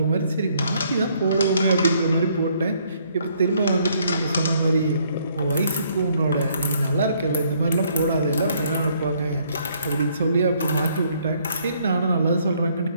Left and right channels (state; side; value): inverted; both; correlation -0.67